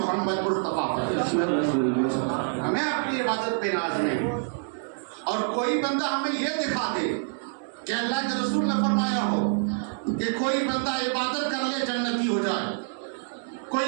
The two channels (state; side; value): silent; left; digital silence